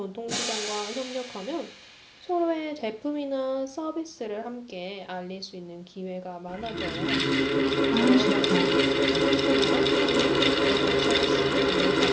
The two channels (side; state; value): both; identical; correlation 1.00